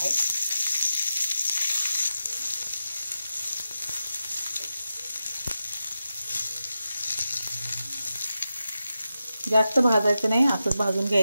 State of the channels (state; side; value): inverted; both; correlation -0.90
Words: जास्त भाजायचं नाही, असंच भाजून